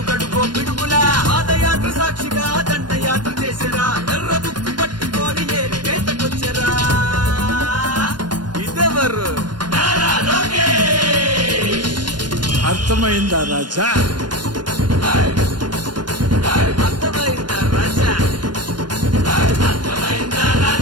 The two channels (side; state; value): left; late; 0.71 ms